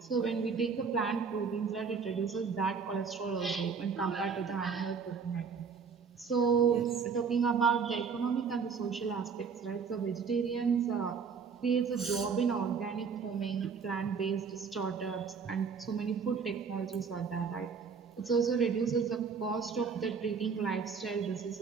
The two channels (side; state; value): left; quieter; 5.8 dB